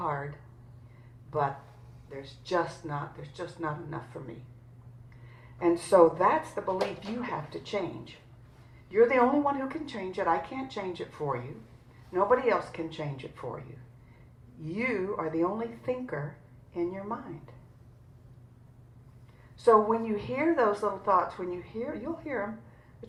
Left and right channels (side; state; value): both; identical; correlation 1.00